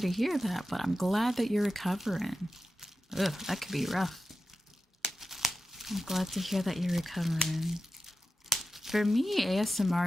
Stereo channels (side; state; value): both; normal; correlation 0.92